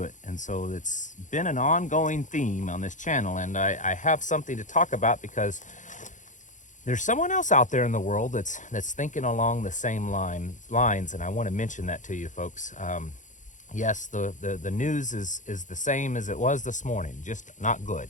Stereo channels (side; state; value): right; late; 0.36 ms